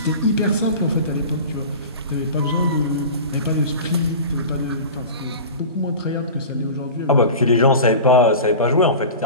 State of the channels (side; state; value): both; inverted; correlation -0.34